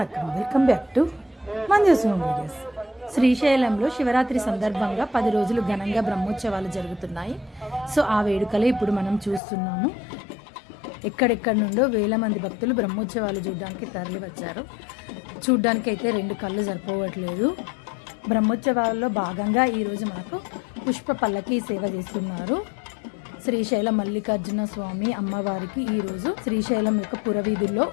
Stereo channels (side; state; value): right; drops out; at 9.4 s